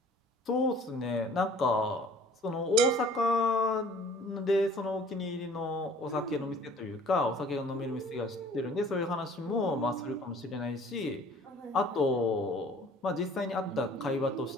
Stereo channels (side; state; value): both; normal; correlation 0.52